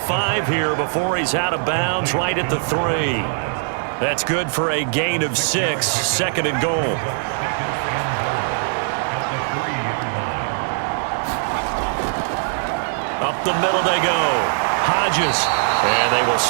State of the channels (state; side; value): silent; left; 56 dB below the other